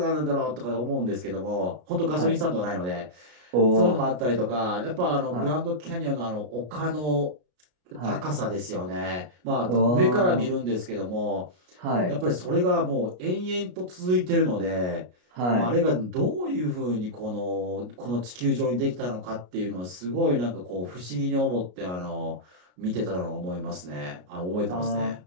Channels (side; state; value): left; late; 33 ms